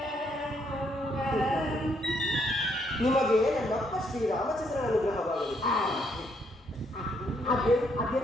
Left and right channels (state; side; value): normal; both; correlation 0.72